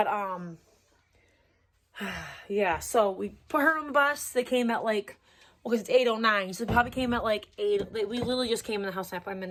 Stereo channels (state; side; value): identical; both; correlation 1.00